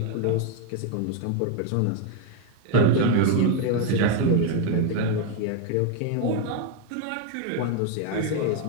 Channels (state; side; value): different; both; correlation 0.01